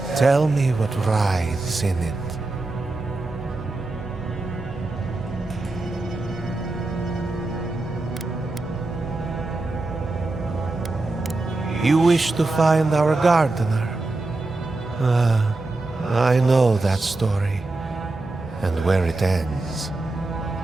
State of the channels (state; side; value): quieter; left; 3.1 dB